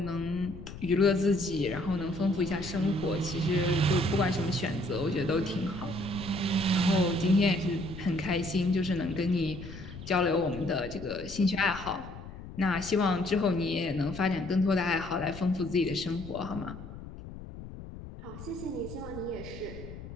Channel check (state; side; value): noise; left; rumble, 12 dB below the sound